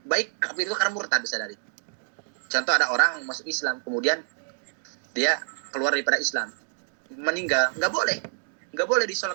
Baik kafir itu karena murtad bisa dari. Contoh ada orang masuk Islam kemudian dia keluar daripada Islam, meninggal, enggak boleh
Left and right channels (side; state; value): left; silent; digital silence